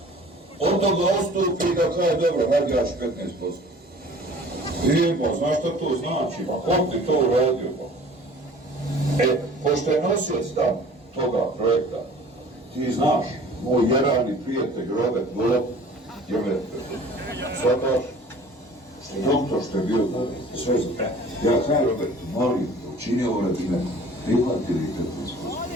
on da ga ostupi i da kaže, dobro, hajde jaš 15%. I pa, znaš šta to znači, pa kom ti to uradio, pa? Pošto je nosioc tam toga projekta, ti znaš, moj jerani prijatelj Robert Golob, je me shvataš, što je doktor, što je bio sve za... Ja kaj Robert, molim, učini ovo radi me, prihvatili 15%.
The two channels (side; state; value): both; normal; correlation 0.47